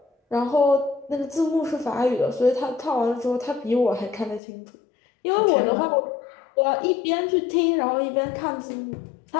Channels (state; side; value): drops out; right; at 4.4 s